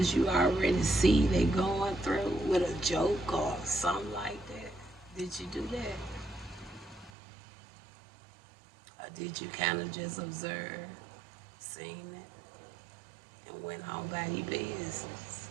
you already see they going through with a joke or something like that? Did you do that? Or did you kind of just observe, seen it, and went on by your business?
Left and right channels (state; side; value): drops out; left; at 7.1 s